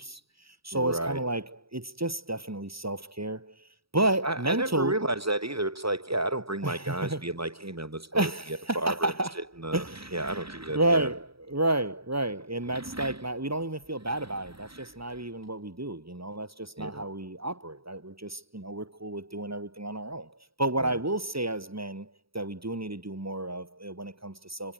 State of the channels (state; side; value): late; left; 0.76 ms